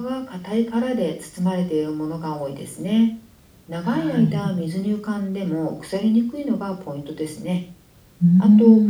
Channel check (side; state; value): both; identical; correlation 1.00